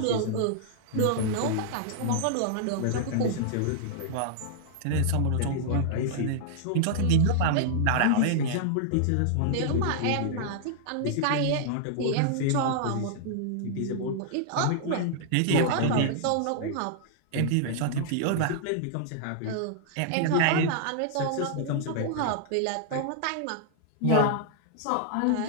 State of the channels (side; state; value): both; different; correlation -0.01